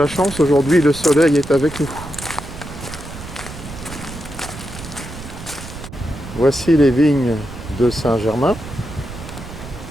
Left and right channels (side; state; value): right; noise; rumble, 12 dB below the sound